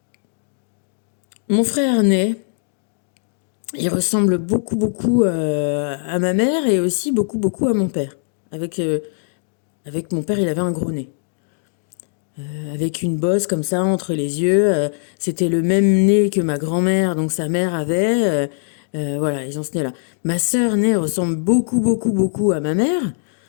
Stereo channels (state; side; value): silent; right; 61 dB below the other